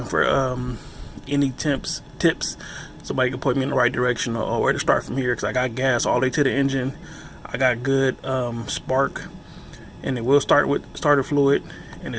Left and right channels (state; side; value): identical; both; correlation 1.00